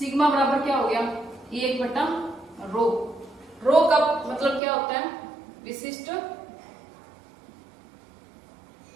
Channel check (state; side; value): drops out; left; at 4.6 s